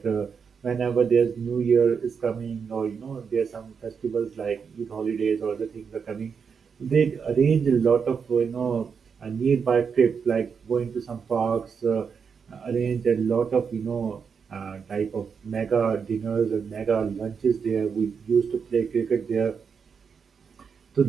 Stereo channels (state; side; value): quieter; left; 6.2 dB